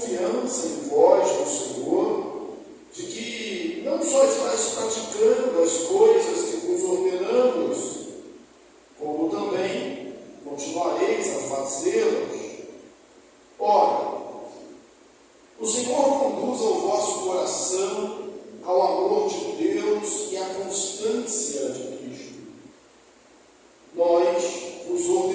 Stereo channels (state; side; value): identical; both; correlation 1.00